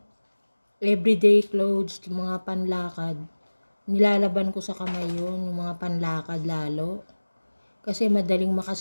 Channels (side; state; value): both; inverted; correlation -1.00